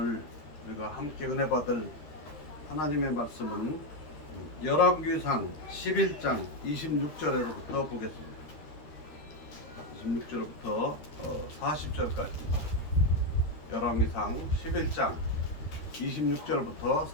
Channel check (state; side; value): late; right; 13 ms